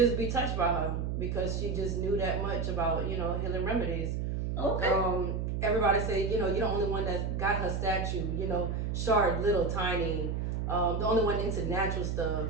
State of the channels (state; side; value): noise; right; hum, 1 dB below the sound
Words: be touched by her, because she just knew that much about, you know, healing remedies. Okay. Everybody say, you know, you're the only one that got her statue, you know, short, little, tiny. The only one into natural stuff,